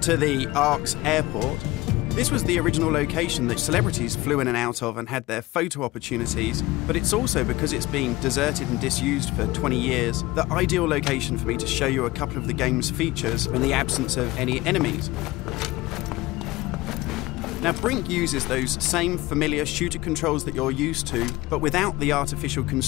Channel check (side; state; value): right; quieter; 19.6 dB